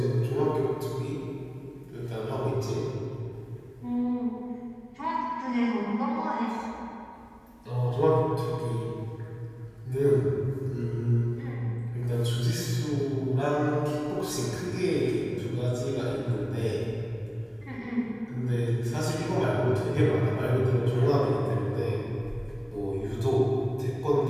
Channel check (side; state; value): both; identical; correlation 1.00